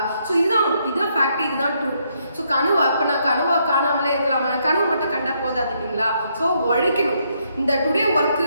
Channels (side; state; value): both; inverted; correlation -0.74